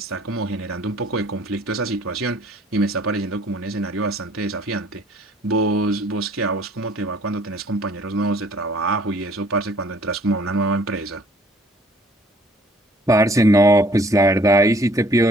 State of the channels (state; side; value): normal; both; correlation 0.57